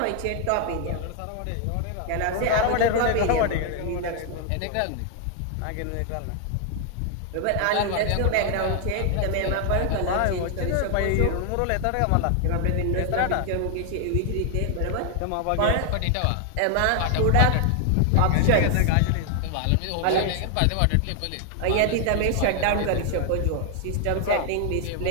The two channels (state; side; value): different; both; correlation 0.00